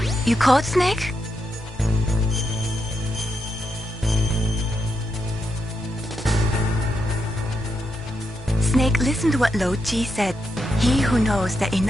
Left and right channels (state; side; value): normal; both; correlation 0.83